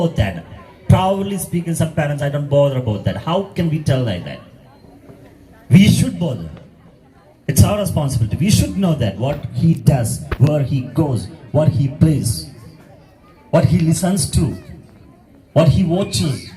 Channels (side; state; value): both; identical; correlation 1.00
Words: that. Proudly speaking, some parents, I don't bother about that. How can we tell like that? We should bother. It's our responsibility. We should know that what he does, where he goes, what he plays, what he listens to, what he watches.